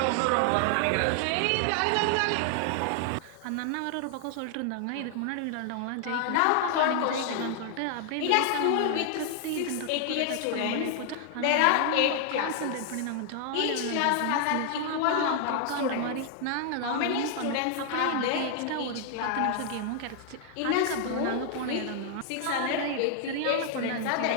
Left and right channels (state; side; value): different; both; correlation 0.00